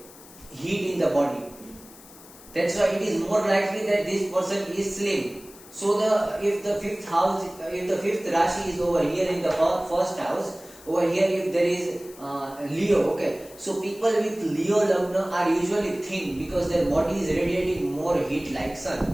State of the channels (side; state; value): left; noise; hiss, 21 dB below the sound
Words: heat in the body. That's why it is more likely that this person is slim. So if the fifth Rashi is over here in the first house, over here if there is Leo, okay, so people with Leo lagna are usually thin because their body is radiating more heat like